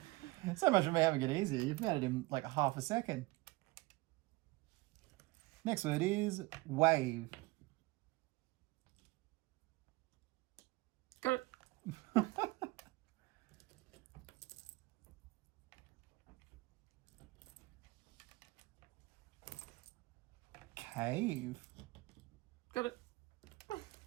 So much for me having it easy. You've made it in like half a second. Next word is wave. Got it. Cave. Got it.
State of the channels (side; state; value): left; quieter; 22.2 dB